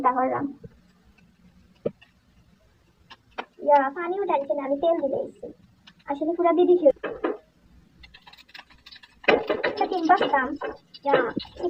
করলাম। পানিও ডালছে না, আমি তেল দিয়ে দিয়েছি, আসলে পুরা দিয়ে দিছি। ডিম বাঁচতাম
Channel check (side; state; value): both; identical; correlation 1.00